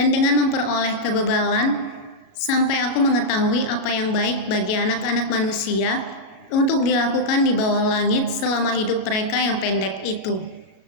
dengan memperoleh kebebalan, sampai aku mengetahui apa yang baik bagi anak-anak manusia untuk dilakukan di bawah langit selama hidup mereka yang pendek itu.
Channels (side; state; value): right; late; 38 ms